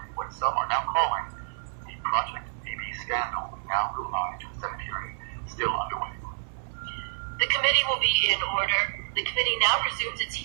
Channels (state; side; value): silent; left; 59 dB below the other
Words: in what some are now calling the Project BB scandal. We now go live to the Senate hearing still underway. The committee will be in order. The committee now resumes its